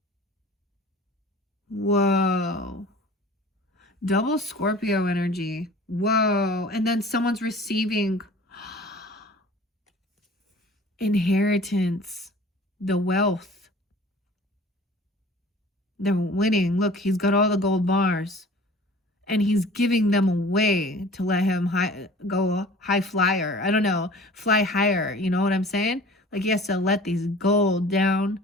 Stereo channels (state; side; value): normal; both; correlation 0.45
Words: Whoa. Double Scorpio energy. Whoa. And then someone's receiving inheritance, the wealth. They're winning. Look, he's got all the gold bars. And he's giving them away to let him go high flyer. I don't know. Fly higher. You know what I'm saying? Like he has to let these gold down.